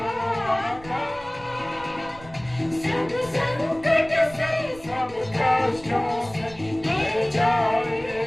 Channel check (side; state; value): right; noise; rumble, 20 dB below the sound